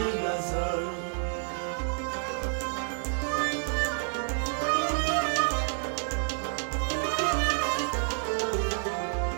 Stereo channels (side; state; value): left; silent; 58 dB below the other